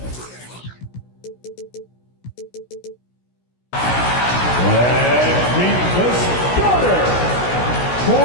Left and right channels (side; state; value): right; late; 16 ms